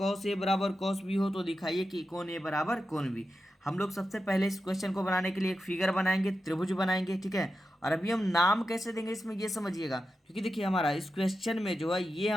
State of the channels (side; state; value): both; normal; correlation 0.90